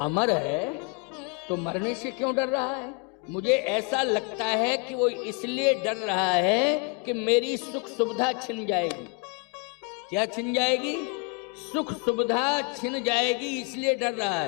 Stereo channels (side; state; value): right; quieter; 32.1 dB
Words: अमर है तो मरने से क्यों डर रहा है? मुझे ऐसा लगता है कि वो इसलिए डर रहा है कि मेरी सुख सुविधा छिन जाएगी। क्या छिन जाएगी? सुख सुविधा छिन जाएगी, इसलिए डर रहा